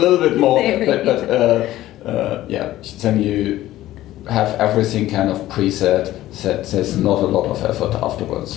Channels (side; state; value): right; quieter; 14.9 dB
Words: bit more, but then you have everything kind of preset, that there's not a lot of effort